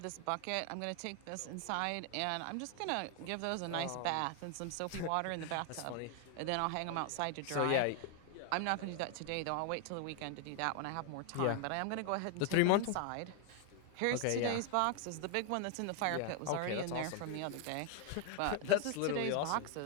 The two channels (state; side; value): different; both; correlation 0.00